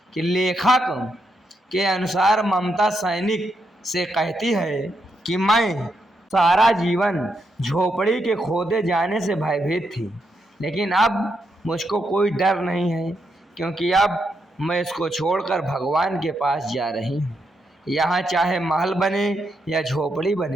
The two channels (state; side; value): normal; both; correlation 0.81